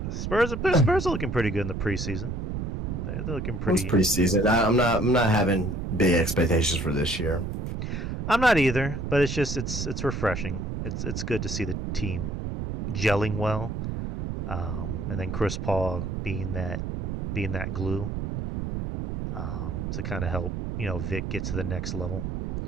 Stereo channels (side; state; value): right; noise; rumble, 3 dB below the sound